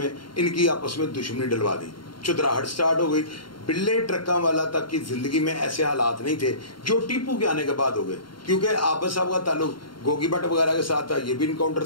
इनकी आपस में दुश्मनी डलवा दी, चुतराहट स्टार्ट हो गई। बिल्ले ट्रक्का वाला तक की ज़िंदगी में ऐसे हालात नहीं थे जो टीपू के आने के बाद हो गए, क्योंकि आबद साहब का ताल्लुक गोगी भट्ट वगैरह के साथ था, ये भी इनकाउंटर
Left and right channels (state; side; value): late; right; 0.73 ms